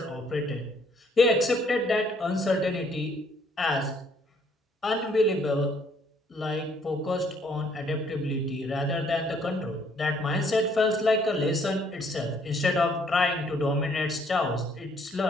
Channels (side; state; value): both; normal; correlation 0.65